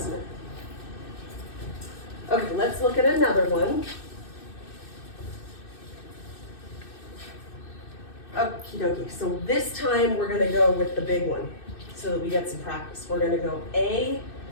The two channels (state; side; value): late; right; 2.6 ms